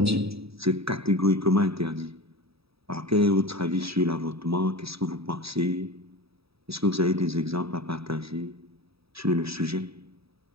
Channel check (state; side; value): late; left; 0.77 ms